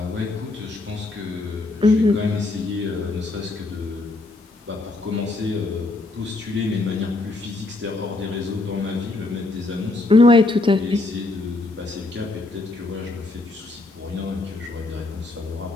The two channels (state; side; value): quieter; right; 3.0 dB